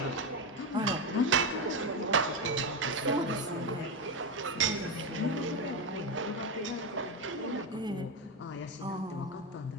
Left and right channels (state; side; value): normal; both; correlation 0.11